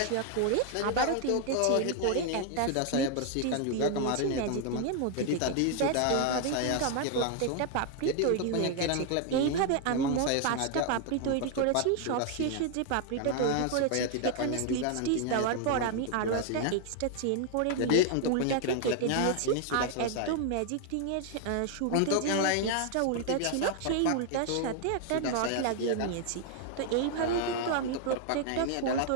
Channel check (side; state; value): both; different; correlation 0.00